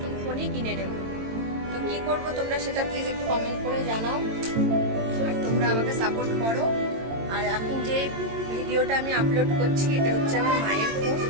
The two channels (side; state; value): left; late; 22 ms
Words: ফোনই কিনে নেব। তো কি করব তোমরা সেটা প্লিজ একটু কমেন্ট করে জানাও, আর তোমরা আমাকে সাপোর্ট করো। আর এখন যে ভিডিওটা আমি আপলোড করছি এটা হচ্ছে আমার মায়ের ফোন।